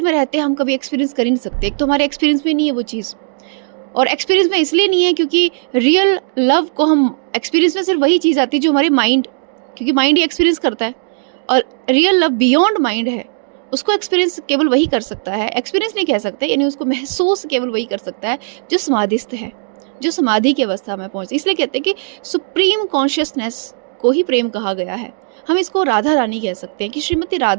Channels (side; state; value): left; silent; digital silence